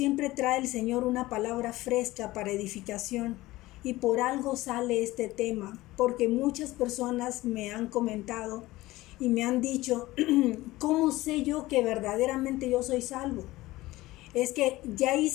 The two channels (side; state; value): right; quieter; 18.3 dB